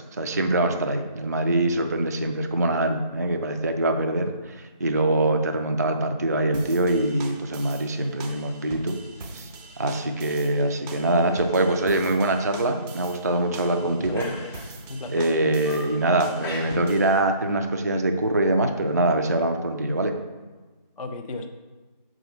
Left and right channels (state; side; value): inverted; both; correlation -0.57